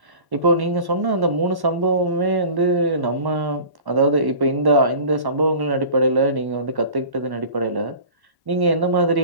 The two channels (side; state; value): left; late; 1.1 ms